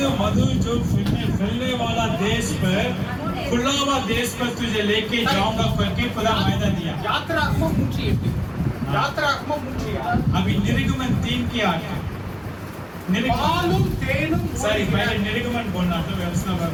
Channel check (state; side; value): identical; both; correlation 1.00